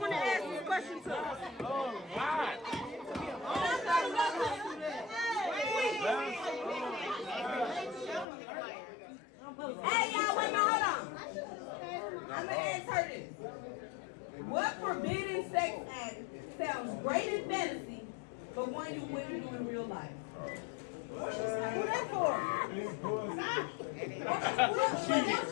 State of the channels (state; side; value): drops out; right; at 8.2 s